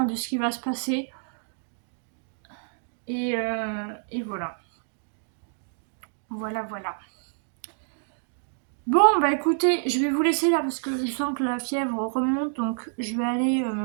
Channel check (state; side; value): silent; left; digital silence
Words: de ce qui va se passer. Et voilà. Voilà, voilà. Bon, bah écoutez, je vais vous laisser là parce que je sens que la fièvre remonte. Donc je vais aller